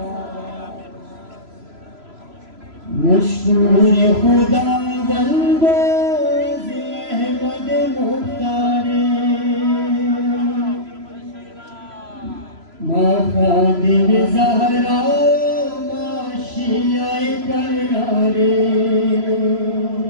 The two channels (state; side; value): late; left; 3.0 ms